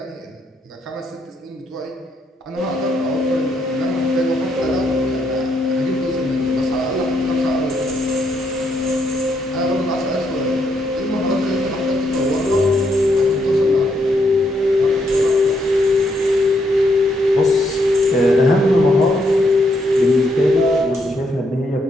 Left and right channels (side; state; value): both; normal; correlation 0.76